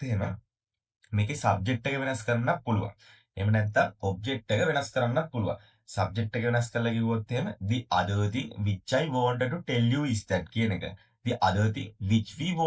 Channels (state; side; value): identical; both; correlation 1.00